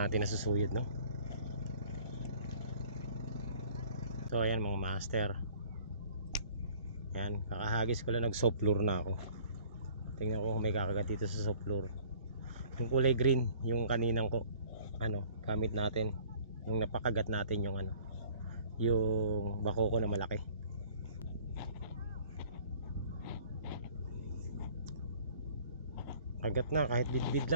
nasusuyod, no? So ayan mga master. Ayan, kakahagis ko lang, nag soft floor na ako. Tingnan ko kung may kakagat dito sa soft floor. Yung kulay green, yung kaninang ko gamit natin. Yung napakagat natin yung yung bako ko na malaki. Kagat na kahit bidbid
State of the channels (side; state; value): both; inverted; correlation -0.51